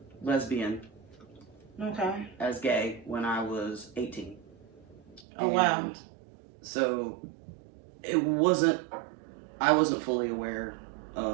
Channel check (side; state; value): left; drops out; at 5.2 s